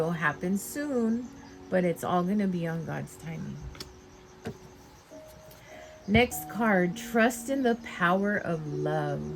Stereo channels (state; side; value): identical; both; correlation 1.00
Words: happen soon, but it's all going to be on God's timing. Next card, trust in the power of love.